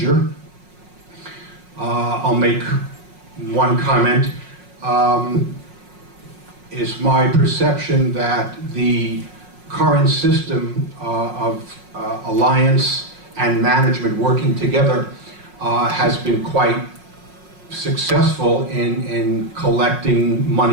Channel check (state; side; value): late; left; 5.5 ms